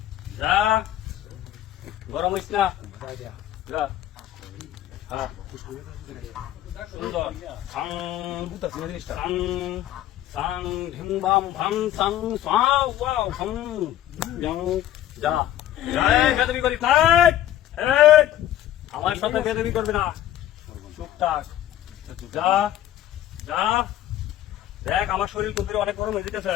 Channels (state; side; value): quieter; right; 12.6 dB